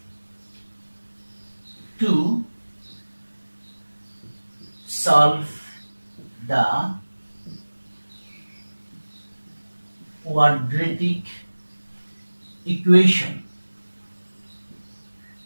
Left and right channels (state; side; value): inverted; both; correlation -1.00